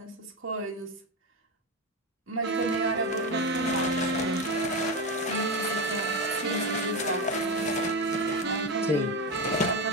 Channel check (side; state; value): both; normal; correlation 0.16